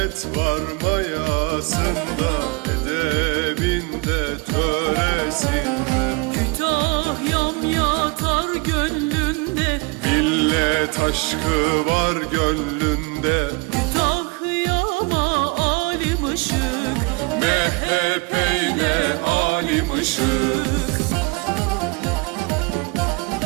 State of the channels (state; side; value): quieter; left; 27.8 dB